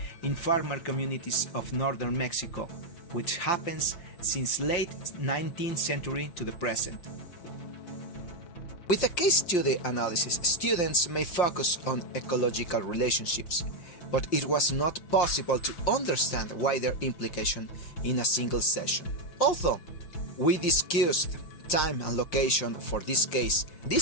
in farmer communities of northern Mexico, which happens since late 19th century to the present. With a case study analysis, students may focus on ecological relationships, but it was not possible to understand wider implication in a single session. Although we discussed time and location for this case,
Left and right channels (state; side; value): late; right; 5.7 ms